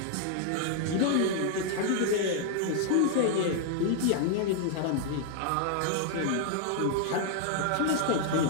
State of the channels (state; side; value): different; both; correlation 0.00